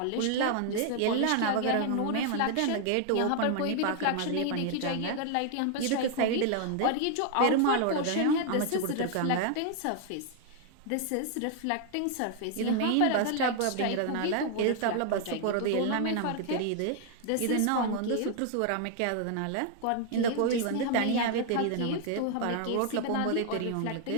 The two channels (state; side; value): different; both; correlation 0.00